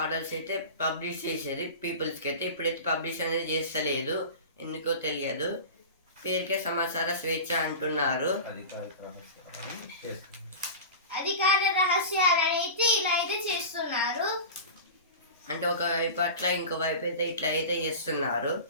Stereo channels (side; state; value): both; inverted; correlation -0.31